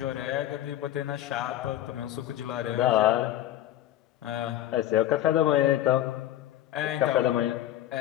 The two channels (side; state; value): right; quieter; 13.0 dB